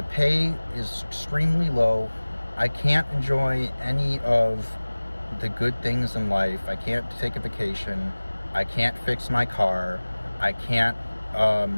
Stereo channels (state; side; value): inverted; both; correlation -1.00